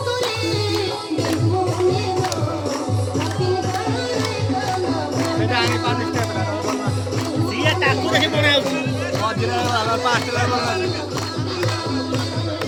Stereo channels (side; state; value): both; identical; correlation 1.00